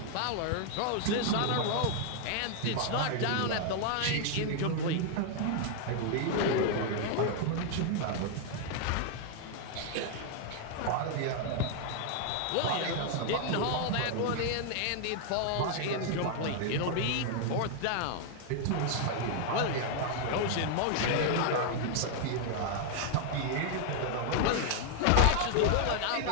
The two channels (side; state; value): both; different; correlation 0.00